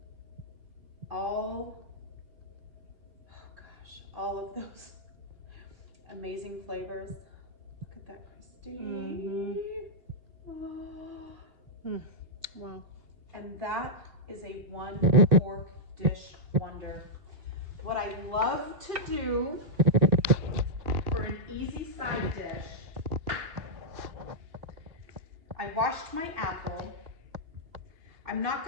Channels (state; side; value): late; left; 2.9 ms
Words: all of those amazing flavors. Look at that, Christy. Oh. Wow. And that is a one pork dish wonder. What I love to do for an easy side dish, I washed my apple. I'm not